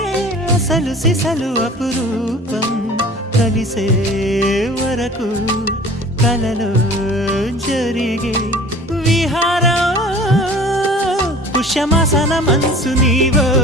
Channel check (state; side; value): normal; both; correlation 0.45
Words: అసలు సిసలు అపురూపం కలిసే వరకు కలలో జరిగే విహారం పుష్యమాసన మనసు నీవో